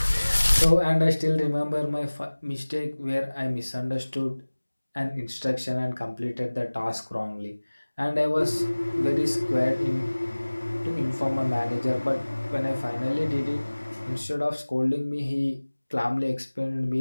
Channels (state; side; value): inverted; both; correlation -1.00